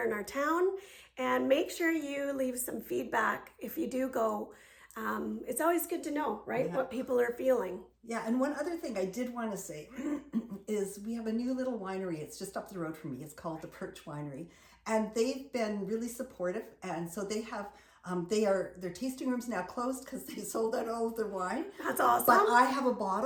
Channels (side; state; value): both; identical; correlation 1.00